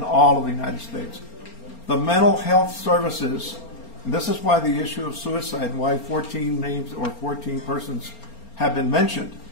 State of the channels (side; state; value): right; late; 4.3 ms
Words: all of the United States. The mental health services, and this is why the issue of suicide and why 14 names or 14 persons have been mentioned.